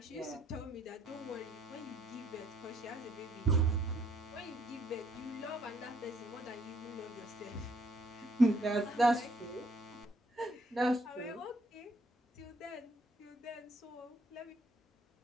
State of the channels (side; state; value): both; normal; correlation 0.66